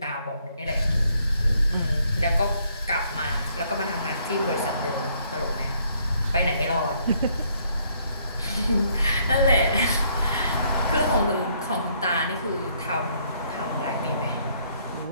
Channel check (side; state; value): both; inverted; correlation -0.68